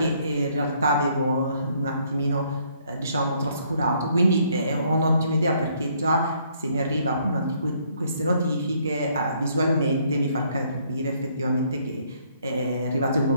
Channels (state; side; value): inverted; both; correlation -0.67